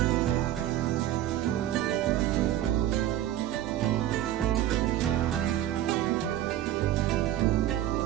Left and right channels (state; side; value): quieter; left; 12.7 dB